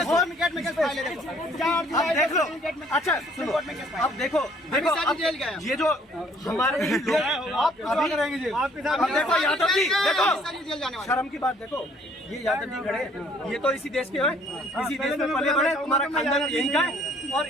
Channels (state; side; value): normal; both; correlation 0.60